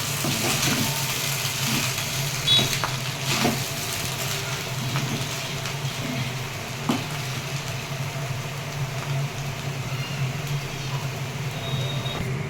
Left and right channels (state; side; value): identical; both; correlation 1.00